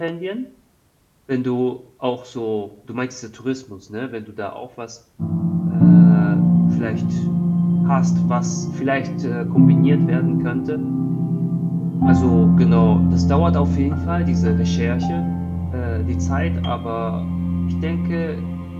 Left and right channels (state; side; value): identical; both; correlation 1.00